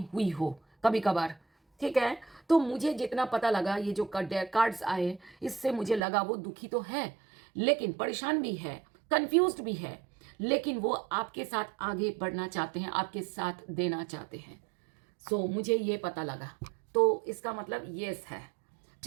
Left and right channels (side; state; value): left; drops out; at 6.0 s